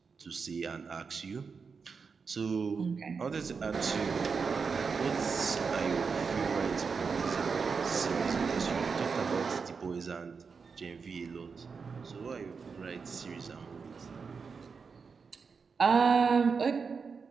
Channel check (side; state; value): left; quieter; 5.3 dB